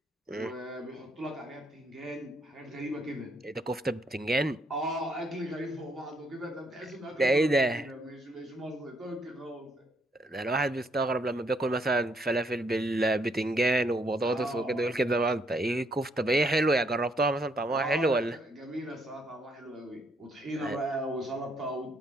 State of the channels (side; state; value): both; normal; correlation 0.72